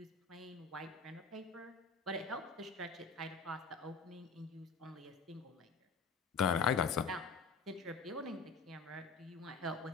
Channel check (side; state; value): right; quieter; 4.8 dB